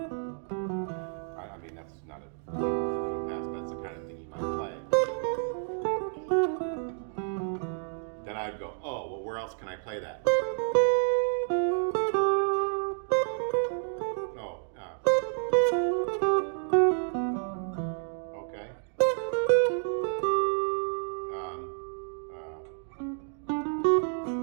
I mean, that's not a Joe Pass, but that's the kind of thing you might play. Then I'd go, oh, well, where else can I play that? Oh, okay.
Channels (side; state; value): left; silent; 58 dB below the other